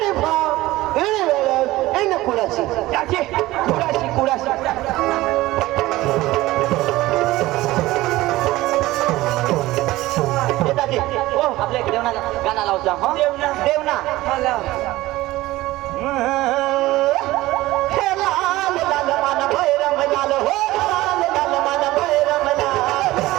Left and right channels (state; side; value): quieter; left; 17.8 dB